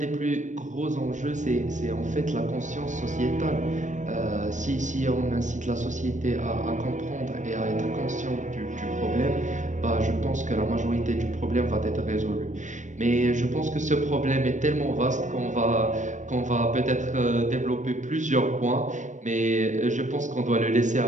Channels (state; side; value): late; left; 0.35 ms